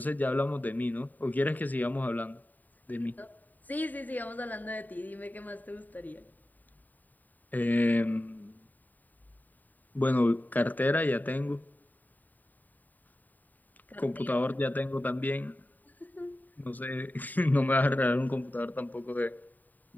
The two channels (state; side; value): late; right; 0.085 ms